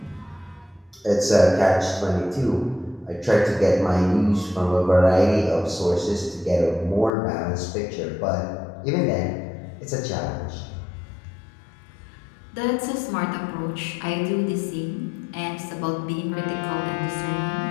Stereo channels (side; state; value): right; drops out; at 7.1 s